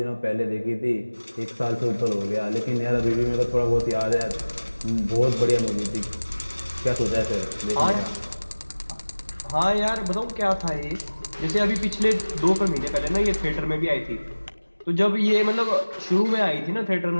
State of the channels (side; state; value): both; inverted; correlation -1.00